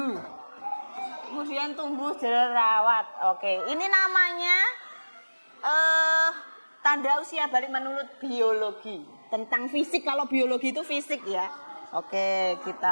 Kemudian tumbuh jerawat. Oke, ini namanya tanda usia balik menurut biologi. Tentang fisik, kalau biologi itu fisik ya. Oke,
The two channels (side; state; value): both; inverted; correlation -1.00